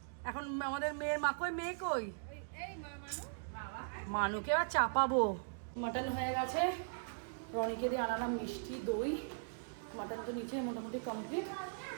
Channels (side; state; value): left; silent; digital silence